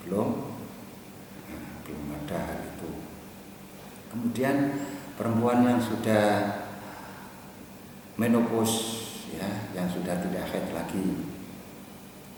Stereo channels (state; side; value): identical; both; correlation 1.00